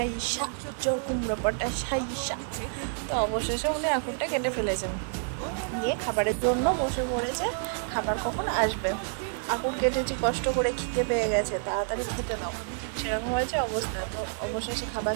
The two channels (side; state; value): left; silent; 59 dB below the other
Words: চোর কুমড়ো পটাশ হাইসা। তো অবশেষে উনি আঁকুরটা কেটে ফেলেছেন, দিয়ে খাবারের জন্য বসে পড়েছে। খাবার কখন আসবে? আঁকুর কেটেছি কষ্ট করে, খিদে পেয়ে গেছে, তাড়াতাড়ি খেতে নাও, সেরকম হয়েছে অবস্থা। তো অবশেষে খাবার